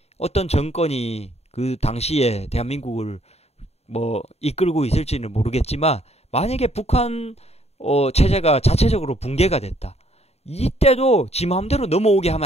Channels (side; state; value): right; late; 0.30 ms